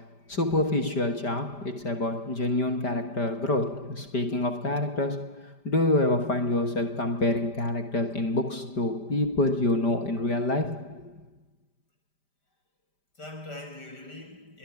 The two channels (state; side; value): late; right; 5.0 ms